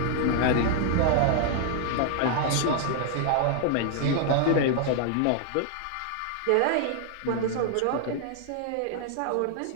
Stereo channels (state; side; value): different; both; correlation 0.00